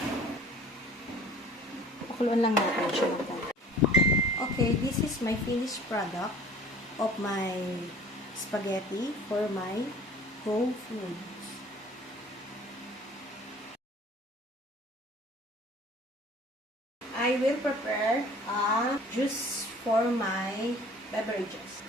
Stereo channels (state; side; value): normal; both; correlation 0.49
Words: pakuluan lang natin siya ng konti. Okay, this is my finished product of my spaghetti for my Go Foods. I will prepare a juice for my beverages.